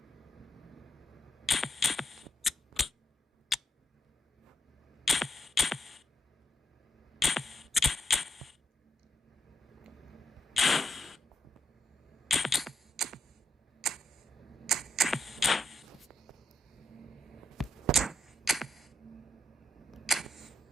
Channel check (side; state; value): both; normal; correlation 0.79